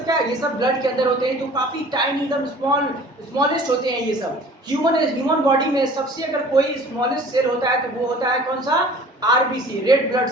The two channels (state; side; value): normal; both; correlation 0.47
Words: क्या है? ये सब ब्लड के अंदर होते हैं। तो काफी टाइनी, एकदम स्मॉलेस्ट होते हैं ये सब। ह्यूमन बॉडी में सबसे अगर कोई स्मॉलेस्ट सेल होता है, तो वो होता है कौन सा? आरबीसी, रेड ब्लड